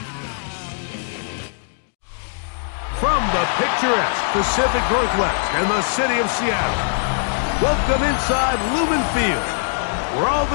From the picturesque Pacific Northwest and the city of Seattle, welcome inside Lumen Field, where all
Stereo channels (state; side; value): silent; right; digital silence